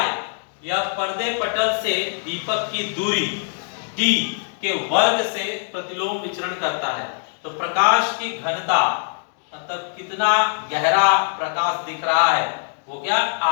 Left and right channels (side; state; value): right; silent; 62 dB below the other